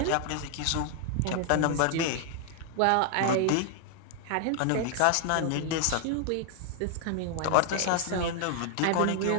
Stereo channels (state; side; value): different; both; correlation 0.00